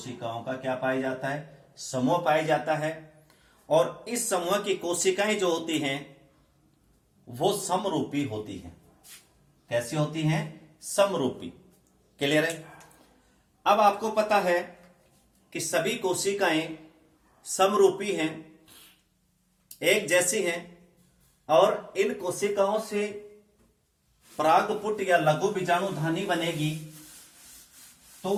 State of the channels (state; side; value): identical; both; correlation 1.00